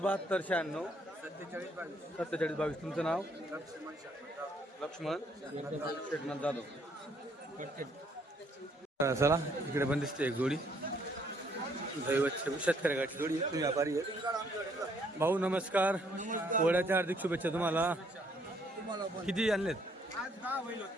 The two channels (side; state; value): both; normal; correlation 0.67